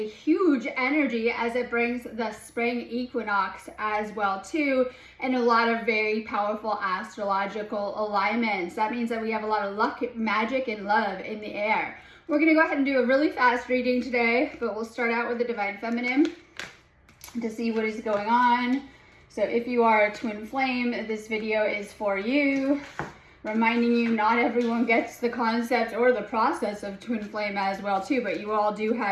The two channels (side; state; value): both; identical; correlation 1.00